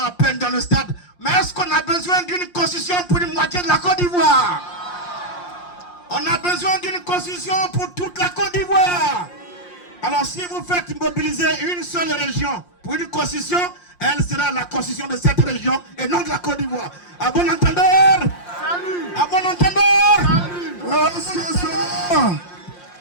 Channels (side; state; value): right; late; 5.7 ms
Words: peine dans le stade. Mais est-ce qu'on a besoin d'une constitution pour une moitié de la Côte d'Ivoire? On a besoin d'une constitution pour toute la Côte d'Ivoire. Alors si vous faites mobiliser une seule région pour une constitution, elle sera la constitution de cette région et non de la Côte d'Ivoire. À bon entendeur? Salut. À bon entendeur? Salut.